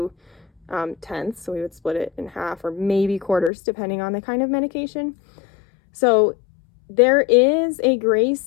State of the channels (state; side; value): drops out; right; at 3.5 s